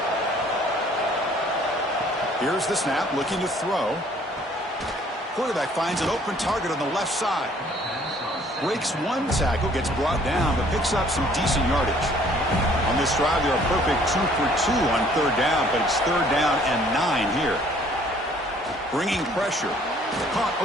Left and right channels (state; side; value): normal; both; correlation 0.58